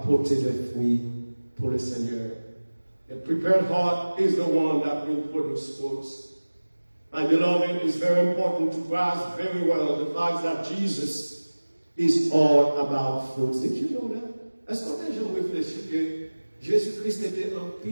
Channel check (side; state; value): both; inverted; correlation -1.00